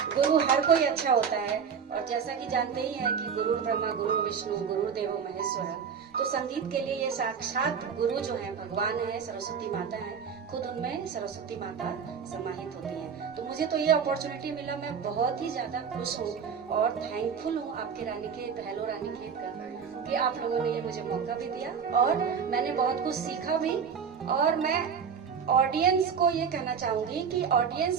गुरु हर कोई अच्छा होता है, और जैसा कि जानते ही हैं कि गुरु ब्रह्मा गुरु विष्णु गुरुदेव महेश्वर, तो संगीत के लिए ये साक्षात गुरु जो है भगवान है, सरस्वती माता है, खुद उनमें सरस्वती माता समाहित होती है। तो मुझे तो ये अपॉर्चुनिटी मिला, मैं बहुत ही ज्यादा खुश हूँ और थैंकफुल हूँ आपके रानीखेत, हेलो रानीखेत का, कि आप लोगों ने ये मुझे मौका भी दिया और मैंने बहुत कुछ सीखा भी। और मैं ऑडियंस को ये कहना चाहूंगी कि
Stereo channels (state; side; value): quieter; left; 6.7 dB